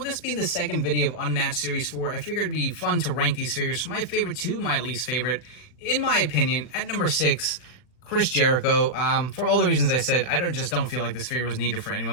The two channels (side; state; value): right; late; 40 ms